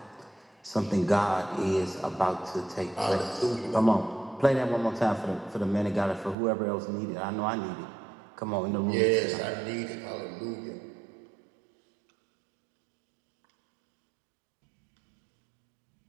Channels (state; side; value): drops out; left; at 6.4 s